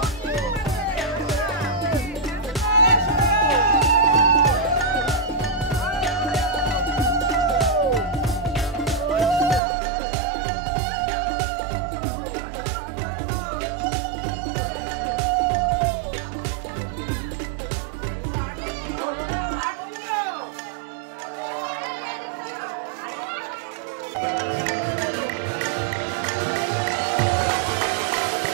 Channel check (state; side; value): drops out; left; at 9.6 s